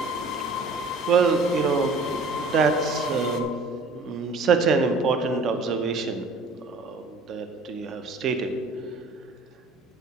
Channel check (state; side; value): quieter; left; 3.3 dB